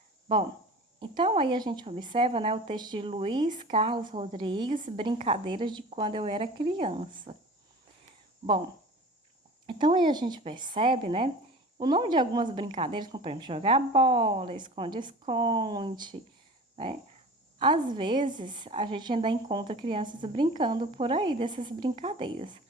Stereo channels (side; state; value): both; normal; correlation 0.39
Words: Bom, então aí a gente observa, né, o texto de Luiz Carlos Rodrigues, Brincadeiras de Quando Eu Era Criança. Bom, então aí a gente percebe, né, o nome de algumas brincadeiras, como por exemplo, jogar bola, esconde-esconde, né? Às vezes a gente ainda encontra crianças brincando por aí dessas brincadeiras,